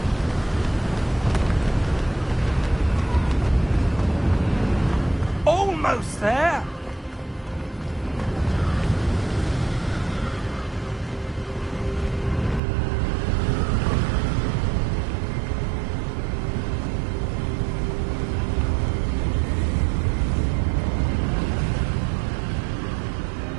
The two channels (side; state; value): left; drops out; at 12.6 s